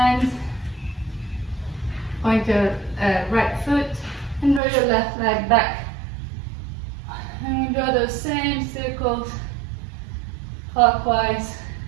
point your right foot, and draw your left leg back. And we draw those same circles clockwise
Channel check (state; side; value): drops out; left; at 4.6 s